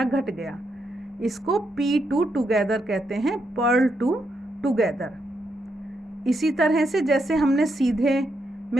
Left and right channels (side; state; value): both; normal; correlation 0.81